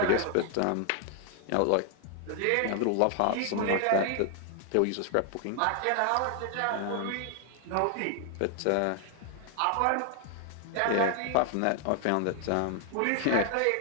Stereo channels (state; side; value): different; both; correlation 0.00